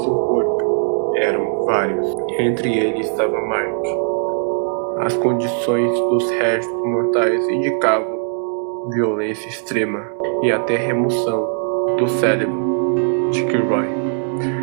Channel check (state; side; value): silent; left; 66 dB below the other